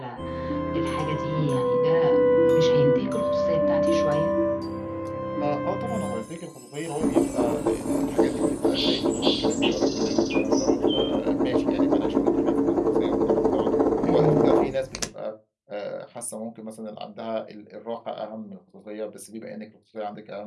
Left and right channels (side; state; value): both; identical; correlation 1.00